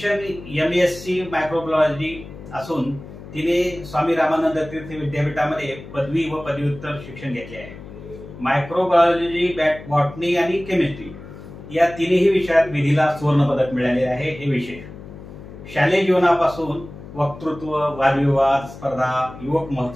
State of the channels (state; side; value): noise; left; hum, 15 dB below the sound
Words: MSc मायक्रोबायोलॉजी असून तिने स्वामी रामानंद तीर्थ विद्यापीठामध्ये पदवी व पदव्युत्तर शिक्षण घेतले आहे. मायक्रोबायोलॉजी, बॉटनी आणि केमिस्ट्री या तिन्ही विषयात विधीला सुवर्ण पदक मिळाले आहे, हे विशेष. शालेय जीवनापासून वक्तृत्व, वादविवाद स्पर्धा, युवक